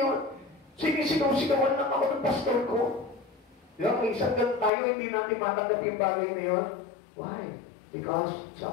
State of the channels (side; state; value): right; drops out; at 4.7 s